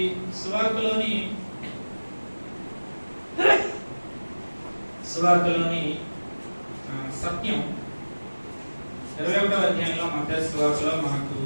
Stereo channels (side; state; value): both; inverted; correlation -1.00